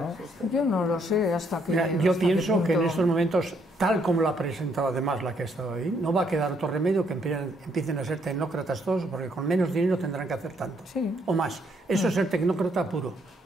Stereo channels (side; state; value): both; normal; correlation 0.71